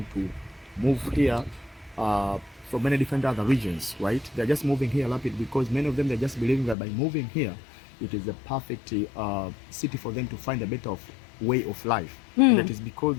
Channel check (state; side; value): drops out; right; at 6.8 s